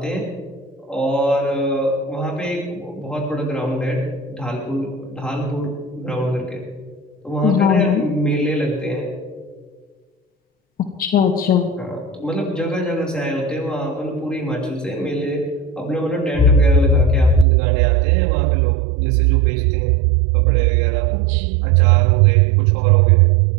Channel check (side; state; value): left; drops out; at 17.4 s